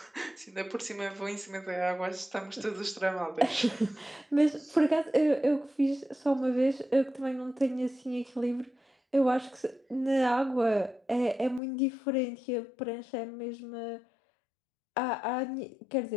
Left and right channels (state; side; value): drops out; right; at 11.6 s